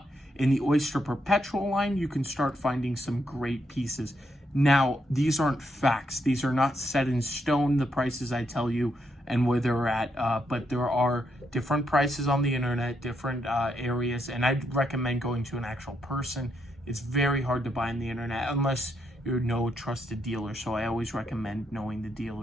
in the Oyster Perpetual line, you can start finding some great pieces. Now, these aren't facts. These are not set in stone, the prices I tell you and where they're at, but there are different prices on the internet, different areas, and I'd recommend going to an actual person. It's very hard to buy on the internet unless you're no trusted dealer, so I always recommend knowing the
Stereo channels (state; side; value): normal; both; correlation 0.78